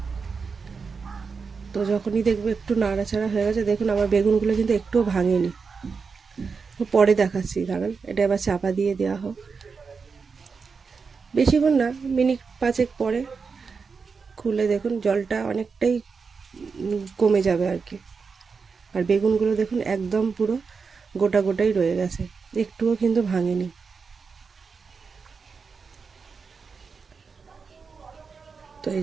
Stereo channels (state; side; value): quieter; left; 5.2 dB